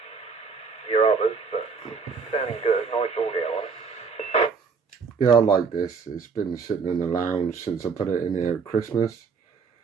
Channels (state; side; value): quieter; left; 5.3 dB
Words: your others, but sounding good. Nice audio on it. Yeah, I like this. It's been sitting in the lounge since I put it in here at Christmas.